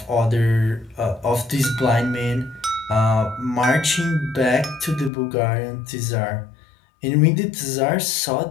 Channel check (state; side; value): drops out; right; at 5.1 s